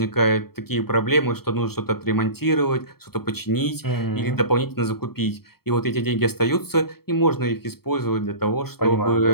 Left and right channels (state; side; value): late; right; 0.95 ms